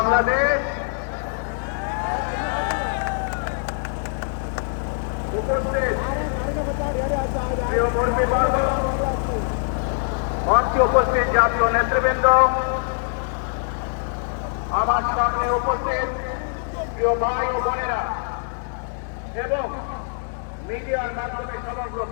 উপস্থিত প্রিয় কর্মীবর্গ, মঞ্চে উপস্থিত জাতীয় নেতৃবৃন্দ, আমার সামনে উপস্থিত প্রিয় ভাই ও বোনেরা এবং মিডিয়ার মাধ্যমে সমগ্র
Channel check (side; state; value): right; silent; digital silence